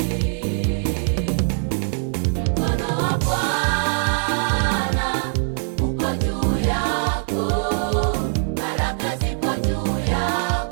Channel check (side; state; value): left; silent; 64 dB below the other